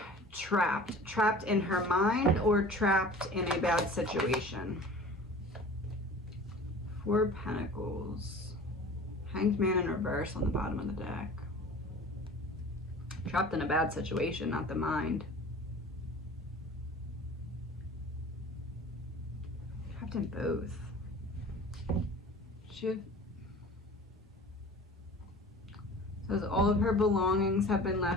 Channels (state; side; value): normal; both; correlation 0.42